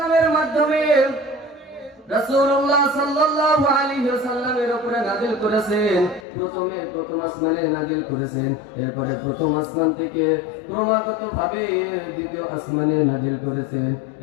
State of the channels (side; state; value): right; drops out; at 6.2 s